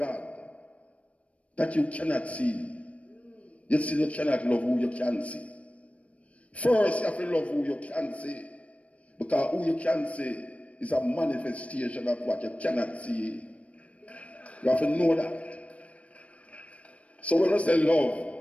that you cannot see? You still you cannot love who you can see. First, you have to love who you can see. Because who you can see is a manifestation of what you cannot see. You have to know that. So when I say love,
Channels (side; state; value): right; late; 0.064 ms